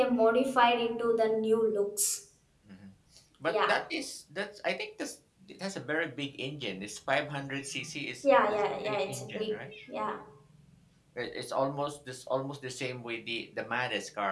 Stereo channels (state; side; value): identical; both; correlation 1.00